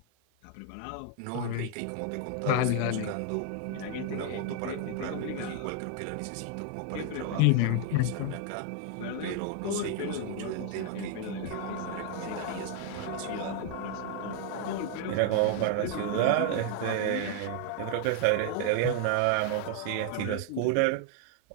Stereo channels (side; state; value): both; different; correlation 0.00